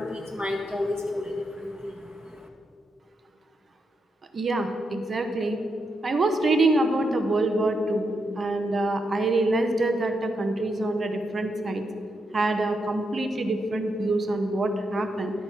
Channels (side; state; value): both; normal; correlation 0.83